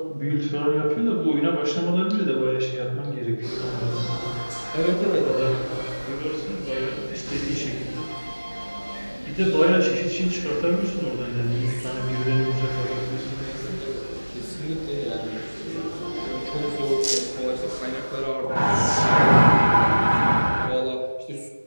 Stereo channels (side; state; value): both; inverted; correlation -1.00